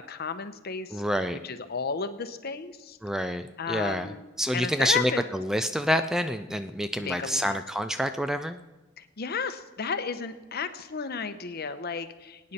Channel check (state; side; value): normal; both; correlation 0.57